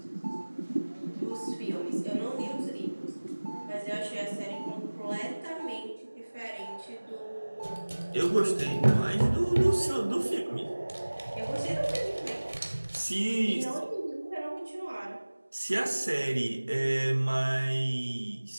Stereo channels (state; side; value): inverted; both; correlation -1.00